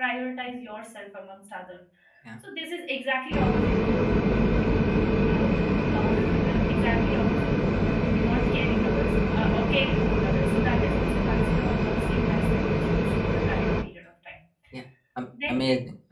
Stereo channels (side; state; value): both; identical; correlation 1.00